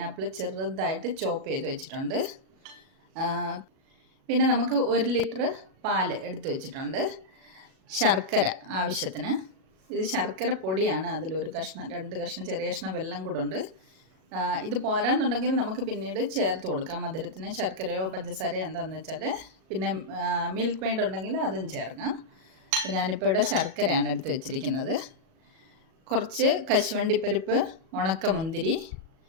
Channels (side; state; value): left; late; 37 ms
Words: ചെറുതായിട്ട് ചോപ്പ് ചെയ്ത് വെച്ചിട്ടുണ്ട്. പിന്നെ നമുക്ക് 1 ലിറ്റർ പാൽ എടുത്ത് വെച്ചിട്ടുണ്ട്. ശർക്കര ആവശ്യത്തിന്. ഇത് ശർക്കര പൊടിയാണ്. അതിലൊരു കഷ്ണം, 2 കഷ്ണം, ചെറിയ കഷ്ണം വെള്ളം കൂടെ ഉണ്ട്. ഇത് പോരാന്നുണ്ടെങ്കിൽ നമുക്ക് പിന്നീട് ചേർത്ത് കൊടുക്കാം മധുരത്തിന്. ശർക്കരയോ പഞ്ചസാരയോ എന്താണെന്ന് വെച്ചാൽ. പിന്നെ മിൽക്ക് മെയ്ഡ് ഉണ്ടെങ്കിൽ അതും ചേർക്കാം. അപ്പോൾ ഞാനിപ്പോൾ ഇവിടെ ശർക്കരയാണ് എടുത്ത് വെച്ചിരിക്കുന്നത്. കുറച്ച് കശുവണ്ടിപ്പരിപ്പ്, ഉണക്കമുന്തിരി,